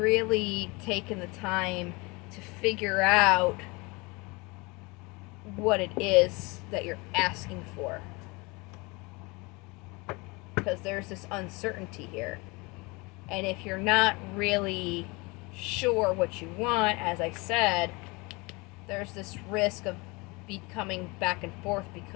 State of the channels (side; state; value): right; quieter; 26.4 dB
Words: taken the time to figure out what it is that you're asking for? Because there's this uncertainty here, and if you're not really sure what you want, as I said, there's this risk of becoming back and forth